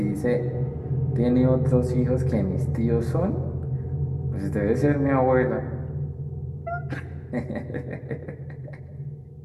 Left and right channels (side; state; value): both; identical; correlation 1.00